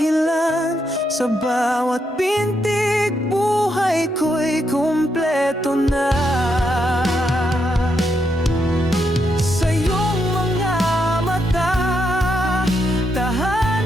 Sa bawat pintig buhay ko'y kumpleto na. Sa iyong mga mata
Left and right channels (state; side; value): normal; both; correlation 0.80